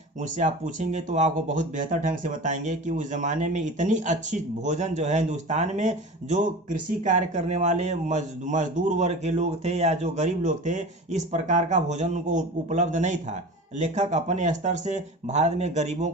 उनसे आप पूछेंगे तो आपको बहुत बेहतर ढंग से बताएंगे कि उस ज़माने में इतनी अच्छी भोजन जो है हिंदुस्तान में, जो कृषि कार्य करने वाले मजदूर वर्ग के लोग थे या जो गरीब लोग थे, इस प्रकार का भोजन उनको उपलब्ध नहीं था। लेखक अपने स्तर से भारत में गरीबों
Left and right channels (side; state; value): both; normal; correlation 0.34